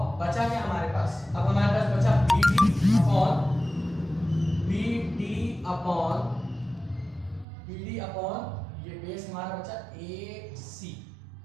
बचा क्या हमारे पास? अब हमारे पास बचा बीडी अपॉन ये बेस हमारा बचा ए सी,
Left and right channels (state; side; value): drops out; left; at 7.5 s